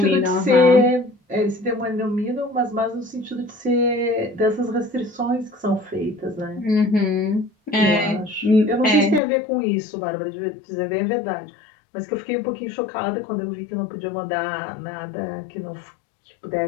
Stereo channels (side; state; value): right; drops out; at 9.2 s